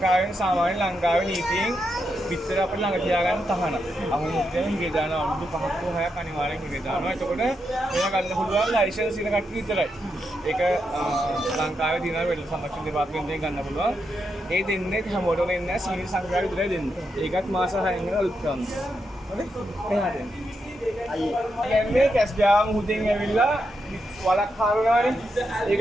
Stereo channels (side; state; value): both; normal; correlation 0.84